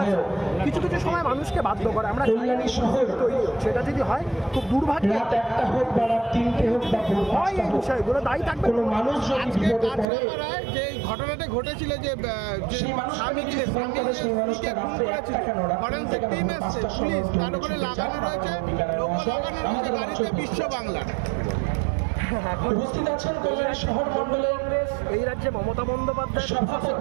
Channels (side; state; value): left; drops out; at 10.1 s